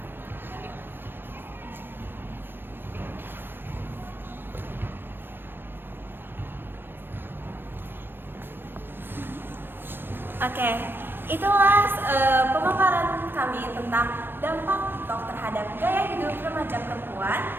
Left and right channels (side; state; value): left; late; 0.10 ms